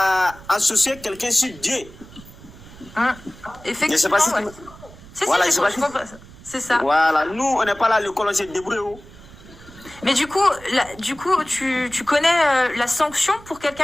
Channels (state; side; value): noise; right; rumble, 20 dB below the sound